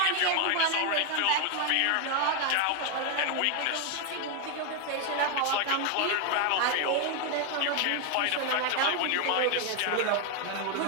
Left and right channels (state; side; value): different; both; correlation 0.01